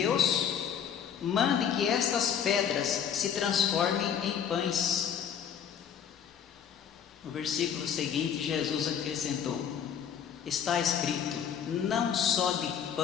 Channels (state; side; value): quieter; right; 8.2 dB